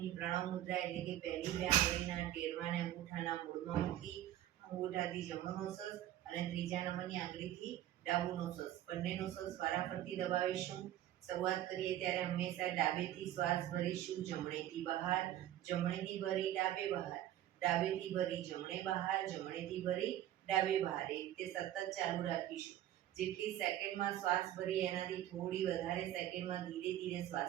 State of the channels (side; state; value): left; quieter; 12.7 dB